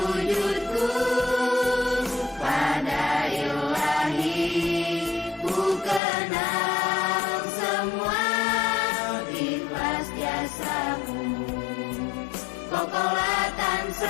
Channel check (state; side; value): drops out; right; at 6.0 s